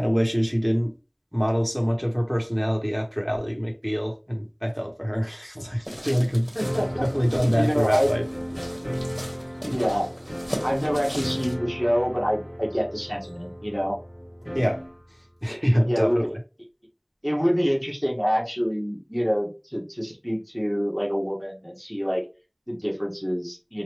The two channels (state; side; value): identical; both; correlation 1.00